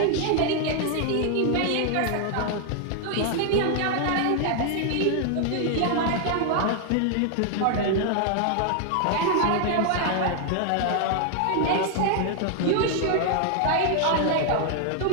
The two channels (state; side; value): different; both; correlation 0.00